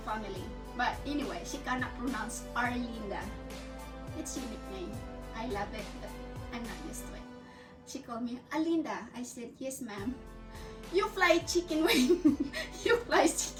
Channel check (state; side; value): identical; both; correlation 1.00